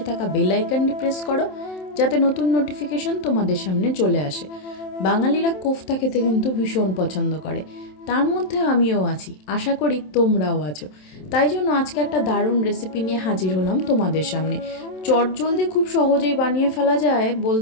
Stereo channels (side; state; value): right; late; 27 ms